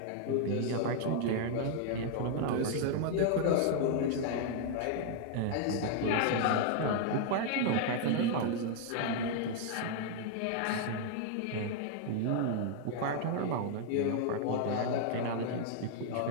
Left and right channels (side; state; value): both; different; correlation 0.00